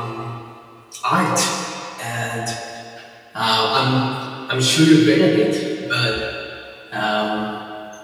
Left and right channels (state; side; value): identical; both; correlation 1.00